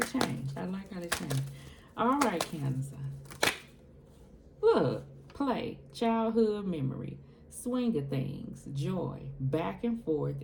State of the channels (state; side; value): identical; both; correlation 1.00